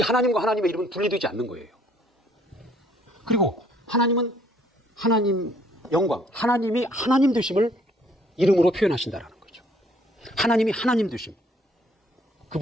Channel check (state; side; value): normal; both; correlation 0.62